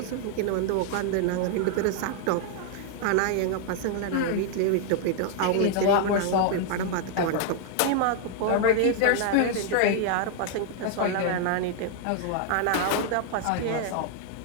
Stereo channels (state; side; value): different; both; correlation 0.00